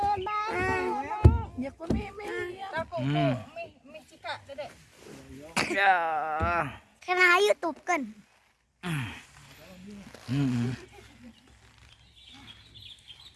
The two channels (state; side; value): identical; both; correlation 1.00